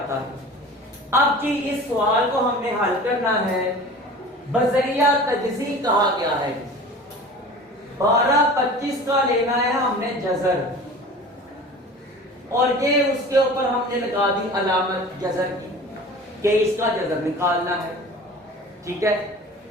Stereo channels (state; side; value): normal; both; correlation 0.39